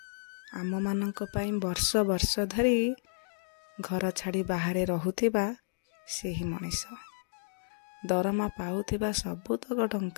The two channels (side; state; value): right; silent; digital silence